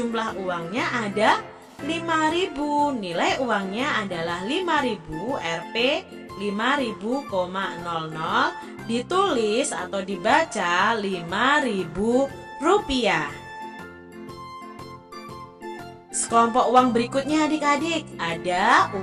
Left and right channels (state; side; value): identical; both; correlation 1.00